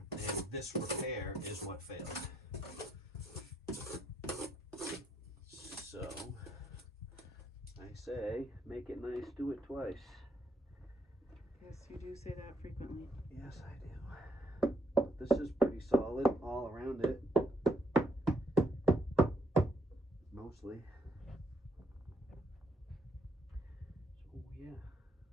and this repair is what failed. So I say, make it nice, do it twice. Yes, you do say that frequently. Yes, I do. This is pretty solid all around it. Mostly. So yeah.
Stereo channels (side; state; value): both; normal; correlation 0.72